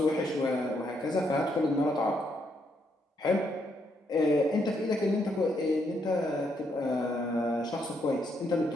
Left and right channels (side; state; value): both; normal; correlation 0.76